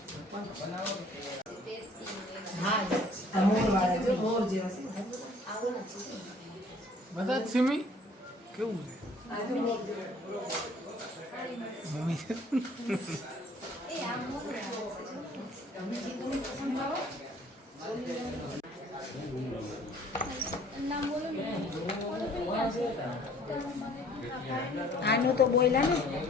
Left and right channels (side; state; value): both; normal; correlation 0.56